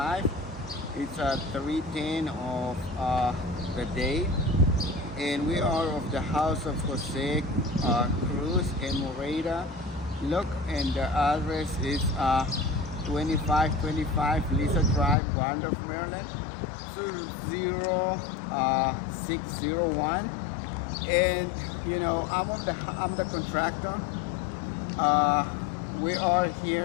It's 3:10 of the day, and we are of the house of Jose Cruz in Moreda. Look, and the address is 2525 Lisa Drive, Wandorf, Maryland, 20601. And I'm the contractor. Uh, we are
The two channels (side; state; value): right; drops out; at 15.2 s